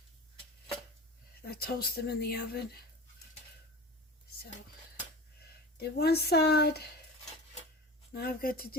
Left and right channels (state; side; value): normal; both; correlation 0.34